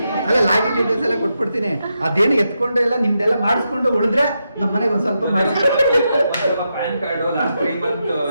ಅಲ್ಲ ಲಾಗಿನ್ ಡೀಟೇಲ್ಸ್ ಎಲ್ಲ ಕೊಟ್ಬಿಡ್ತೀನಿ. ಅದೇನು ಎತ್ಕೊಂಡು ಎಲ್ಲ ನಿಮ್ದೆಲ್ಲ ಮಾಡಿಸ್ಕೊಂಡು ಉಳಿದ್ರೆ ನಮ್ಮ ಮನೆಗೆ ಒಂದ್ ಸ್ವಲ್ಪ ಮಾಡಿ. ಪ್ಯಾನ್ ಕಾರ್ಡ್ ಲಾಸ್ಟ್ 3 ಮಂತ್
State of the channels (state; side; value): inverted; both; correlation -0.85